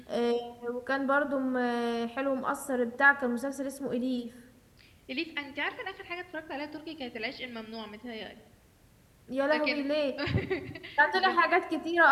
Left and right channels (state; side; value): identical; both; correlation 1.00